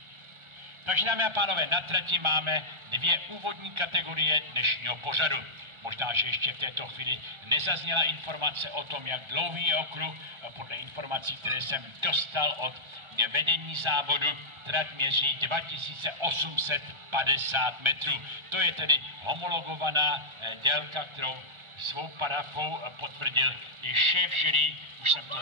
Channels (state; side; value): late; left; 1.4 ms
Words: Takže dámy a pánové, na trati máme dvě úvodní kategorie dnešního pořadu. Možná, že ještě v této chvíli nezazněla informace o tom, jak dlouhý je okruh. Podle informací, které jsem dostal od vedení závodu, trať měří 2850 metrů. To je tedy homologovaná délka, kterou svou parafou potvrdil i šéf jury, už jsem to